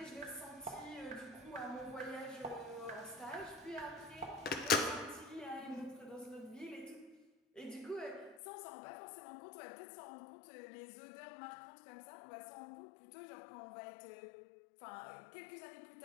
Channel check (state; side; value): drops out; right; at 8.4 s